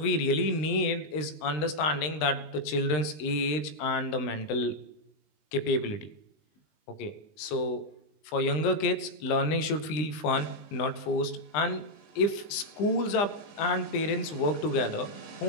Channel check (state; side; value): late; right; 19 ms